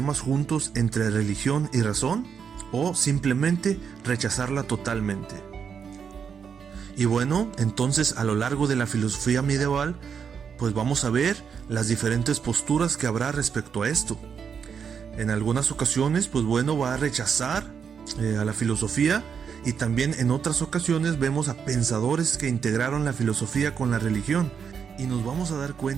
juntos entre religión y razón, o simplemente rechazarla totalmente. Y bueno, entonces a lo largo de la filosofía medieval, pues vamos a ver las diferentes posturas que habrá respecto a esto. En algunas ocasiones, pues bueno, va a rechazar a la filosofía, y también en otras ocasiones vemos a pensadores que integraron la filosofía con la religión, y nos vamos a dar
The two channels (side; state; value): left; quieter; 6.9 dB